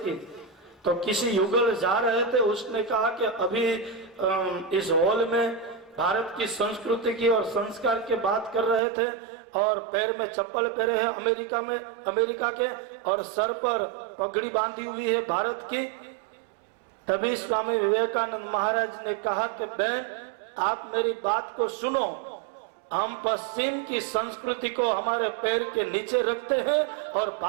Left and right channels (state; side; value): drops out; left; at 8.8 s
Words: की। तो किसी युगल जा रहे थे, उसने कहा कि अभी इस हॉल में भारत की संस्कृति की और संस्कार की बात कर रहे थे और पैर में चप्पल पहने हैं अमेरिका के और सर पर पगड़ी बांधी हुई है भारत की। तभी स्वामी विवेकानंद महाराज ने कहा कि बहन आप मेरी बात को सुनो, हम पश्चिम की संस्कृति को हमारे पैर के नीचे रखते हैं और